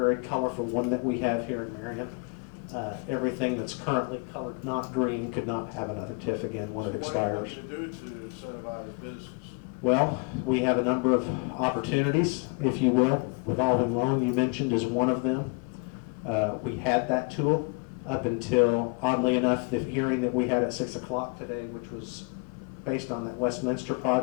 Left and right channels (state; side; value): quieter; right; 31.9 dB